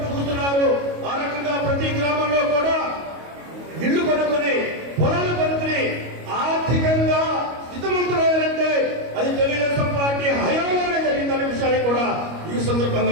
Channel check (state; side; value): late; left; 25 ms